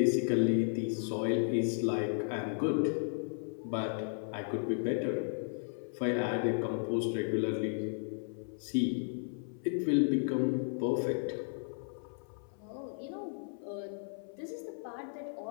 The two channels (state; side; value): silent; right; 55 dB below the other